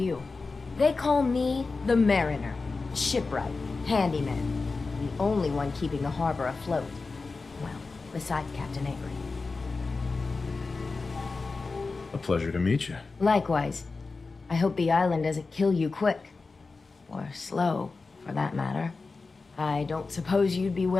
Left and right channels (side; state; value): right; quieter; 4.0 dB